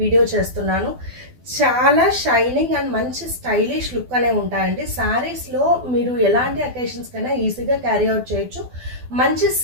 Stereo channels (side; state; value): left; late; 12 ms